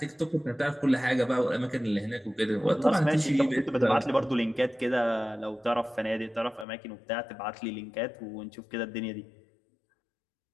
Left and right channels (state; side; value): drops out; right; at 6.7 s